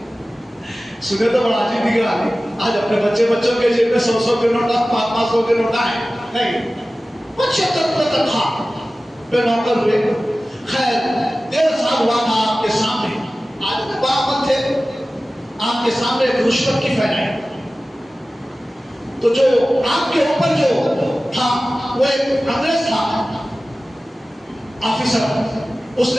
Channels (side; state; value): both; normal; correlation 0.96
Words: سنے تو بڑا عجیب دکھ رہا ہے، آج اپنے بچوں کے جیب میں 100 کے نوٹ، 500 کے نوٹ آئے نہیں، 75 روپے تنخواہ پہ نوکر ہوئے۔ خیر 1.5 سال ہوا تھا آپ کے سامنے، آج میں باعمل تھے، آپ کے سامنے ایک رشوت کی پھیلائی، تو جو آپ کے اوپر جو تھا وہ ایک انگریز تھا آفیسر، اس